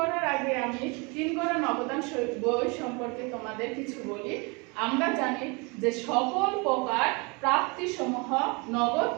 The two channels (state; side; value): quieter; left; 29.8 dB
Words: আগে আমি ৩ গড়া নবদান বই সম্পর্কে তোমাদের কিছু বলি। আমরা জানি যে সকল প্রকার প্রাপ্তিসমূহ, নগদ